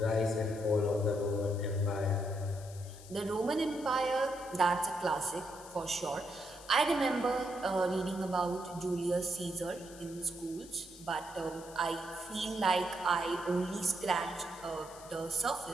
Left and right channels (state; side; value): noise; left; hiss, 18 dB below the sound